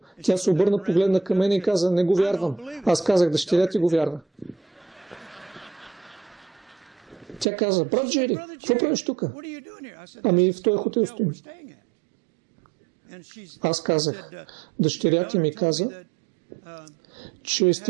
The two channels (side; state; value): left; drops out; at 7.5 s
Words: Тя се обърна, погледна към мен и каза, не го вярвам. Аз казах, дъщеря ти го вярва. Тя каза, брат Джери, какво правиш тук? Ами в този хотел стоим. Аз казах, дъщеря ти ми каза, че